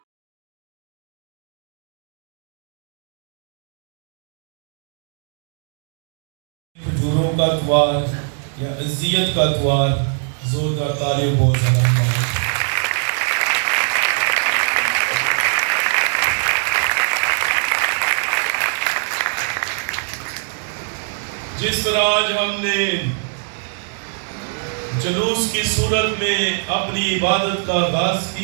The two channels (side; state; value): left; silent; 63 dB below the other